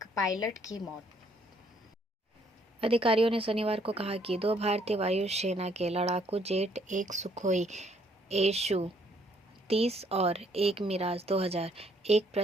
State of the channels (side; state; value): both; normal; correlation 0.66